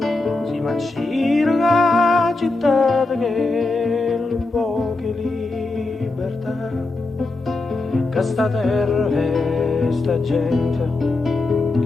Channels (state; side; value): quieter; right; 3.3 dB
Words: Si macira la città che un po' che libertà, che sta terra e sta gente,